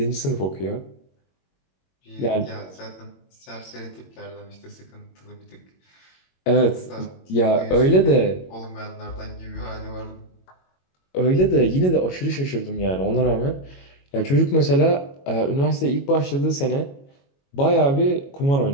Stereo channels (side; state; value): right; late; 22 ms